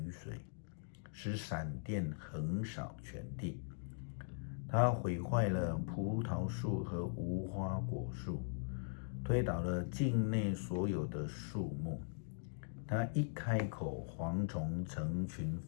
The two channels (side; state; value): right; silent; digital silence